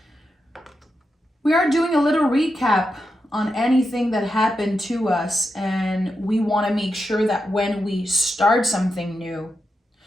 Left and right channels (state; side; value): normal; both; correlation 0.87